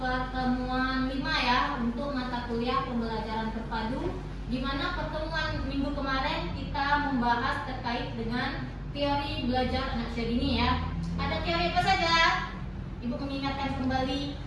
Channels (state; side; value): identical; both; correlation 1.00